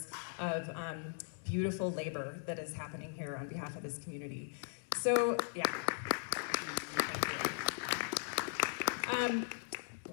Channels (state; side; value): silent; right; digital silence